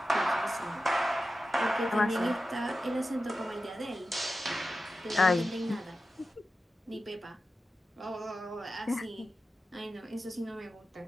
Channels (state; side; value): normal; both; correlation 0.92